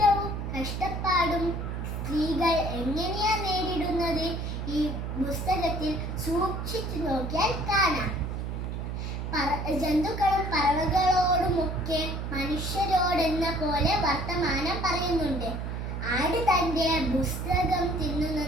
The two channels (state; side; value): noise; right; hum, 4 dB below the sound